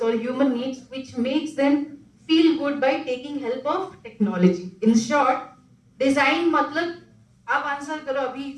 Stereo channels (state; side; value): identical; both; correlation 1.00